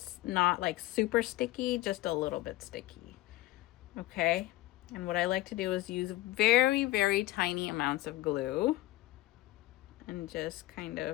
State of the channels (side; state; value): right; quieter; 17.6 dB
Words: not like super sticky, just a little bit sticky. Okay. And what I like to do is use very, very tiny amounts of glue and just kind